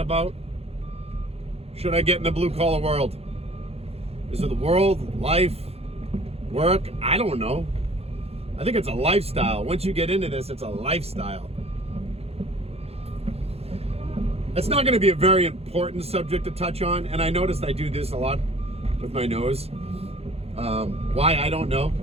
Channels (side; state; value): left; late; 0.29 ms